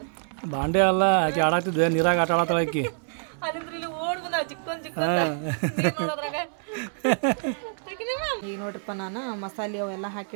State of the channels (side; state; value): left; silent; digital silence